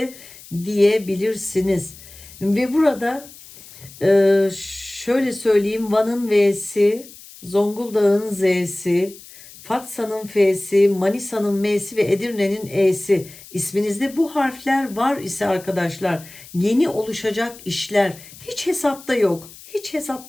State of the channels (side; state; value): left; noise; hiss, 19 dB below the sound